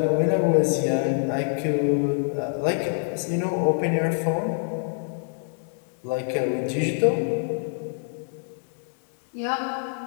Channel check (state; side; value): silent; right; 61 dB below the other